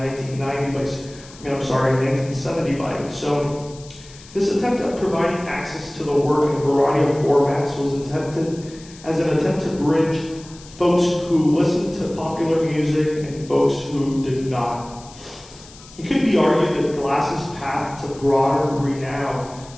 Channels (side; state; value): left; noise; hiss, 21 dB below the sound